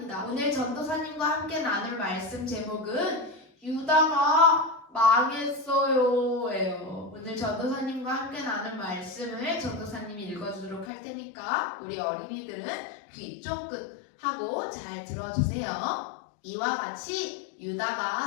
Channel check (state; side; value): drops out; right; at 10.9 s